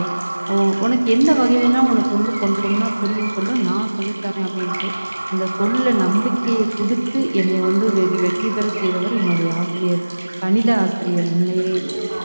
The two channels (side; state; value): both; inverted; correlation -1.00